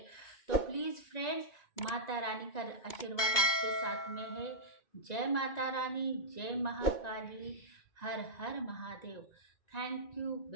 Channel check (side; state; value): right; late; 2.3 ms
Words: तो प्लीज़ फ्रेंड्स, माता रानी का आशीर्वाद आपके साथ में है। जय माता रानी, जय महाकाली, हर हर Mahadev. Thank you